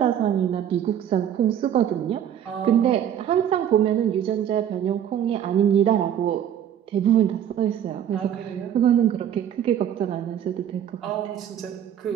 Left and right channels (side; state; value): left; quieter; 9.8 dB